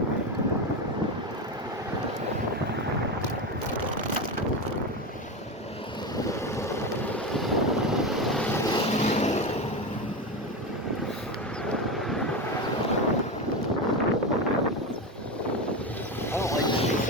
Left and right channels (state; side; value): normal; both; correlation 0.18